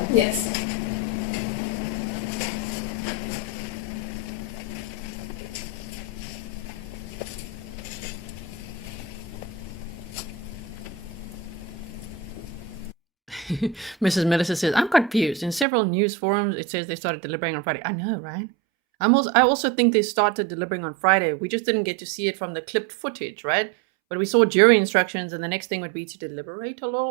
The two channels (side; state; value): left; drops out; at 15.7 s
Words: Yes. Mrs. Melissa says, I'm confused. In several news forums, it says they started deliberating on Friday. I know, right? I also think they started deliberating on Friday. We just didn't get to see it from the clipped footage, right? But we saw jury instructions, and the next thing would be to deliberate a